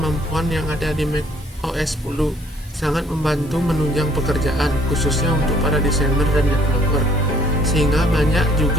yang ada di macOS 10 sangat membantu menunjang pekerjaan, khususnya untuk para desainer dan developer, sehingga banyak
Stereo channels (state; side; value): normal; both; correlation 0.61